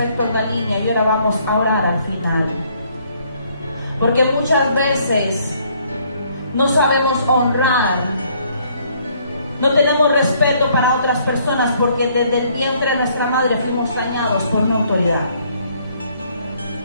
a la línea, y ahora vamos a orar al final. Porque muchas veces no sabemos honrar, no tenemos respeto para otras personas, porque desde el vientre de nuestra madre fuimos dañados por una autoridad.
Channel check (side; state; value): both; inverted; correlation -0.65